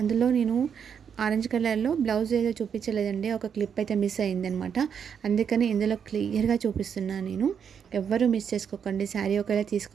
నేను ఆరెంజ్ కలర్లో బ్లౌజ్ ఏదో చూపించలేదండి, ఒక క్లిప్ అయితే మిస్ అయిందనమాట. అందుకని ఇందులో క్లియర్గా చూపిస్తున్నాను నేను. ఎవ్వరూ మిస్ చేసుకోకండి. శారీ ఒకవేళ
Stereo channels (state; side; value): quieter; left; 7.4 dB